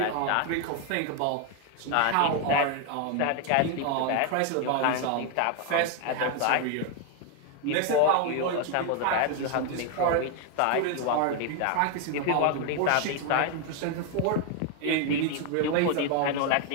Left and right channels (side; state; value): both; different; correlation 0.01